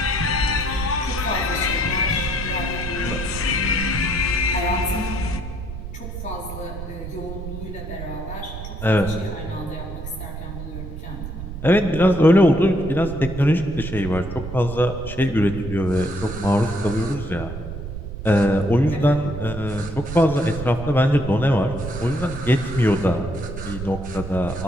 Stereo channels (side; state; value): right; noise; rumble, 8 dB below the sound